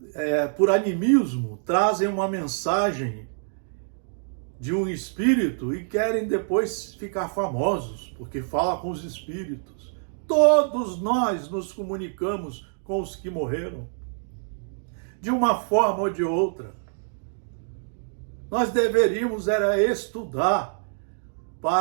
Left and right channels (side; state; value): left; silent; digital silence